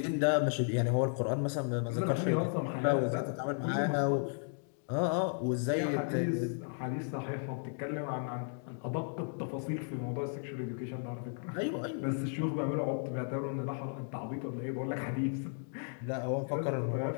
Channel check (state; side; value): silent; right; 55 dB below the other